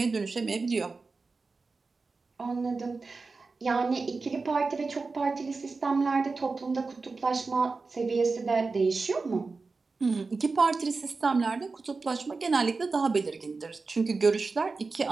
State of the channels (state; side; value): quieter; left; 4.1 dB